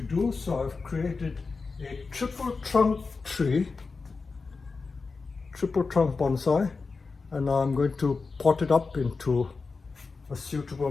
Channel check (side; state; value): right; quieter; 4.4 dB